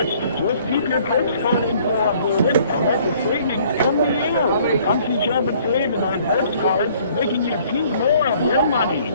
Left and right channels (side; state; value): both; inverted; correlation -0.59